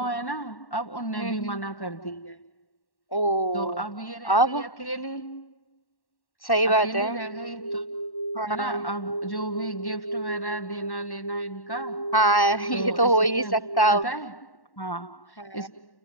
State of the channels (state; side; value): late; right; 1.1 ms